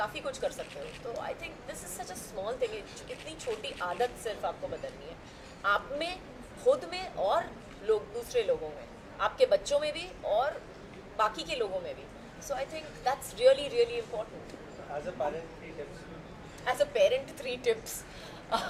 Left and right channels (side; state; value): both; identical; correlation 1.00